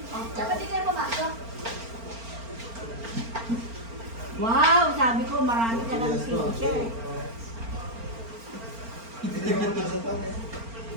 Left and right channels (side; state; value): left; late; 4.4 ms